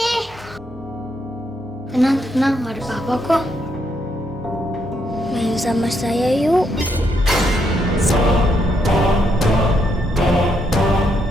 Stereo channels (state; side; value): normal; both; correlation 0.77